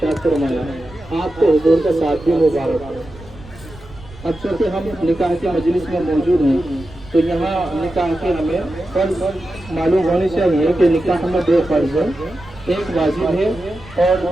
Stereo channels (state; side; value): noise; right; rumble, 19 dB below the sound